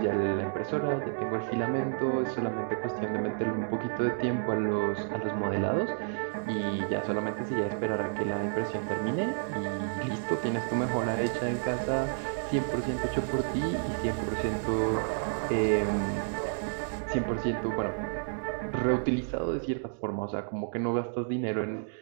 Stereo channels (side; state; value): left; silent; digital silence